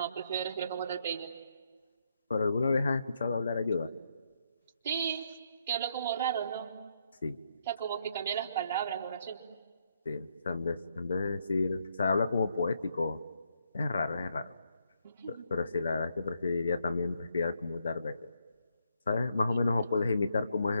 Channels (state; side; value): inverted; both; correlation -0.76